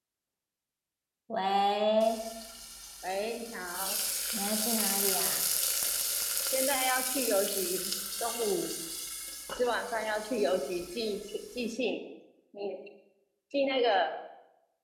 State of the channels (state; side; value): identical; both; correlation 1.00